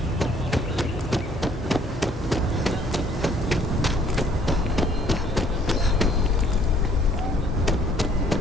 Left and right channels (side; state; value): both; normal; correlation 0.60